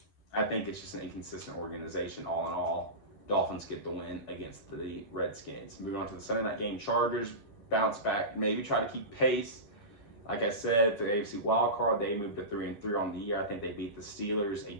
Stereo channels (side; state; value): right; late; 10 ms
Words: I think it's just an inconsistent organization all in all. Dolphins get the win against the Redskins. Moving on to the Sunday night game, Chargers bounce back, maybe try to keep pace. Like I said, for the AFC wild card, they moved to 3-3 on the year. I think they beat the Steelers, a